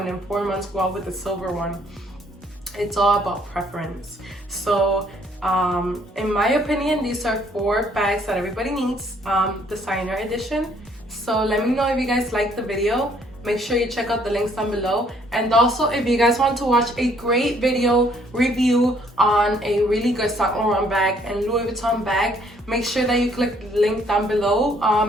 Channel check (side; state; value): both; normal; correlation 0.64